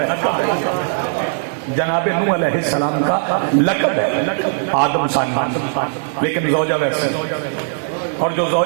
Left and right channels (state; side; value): silent; left; digital silence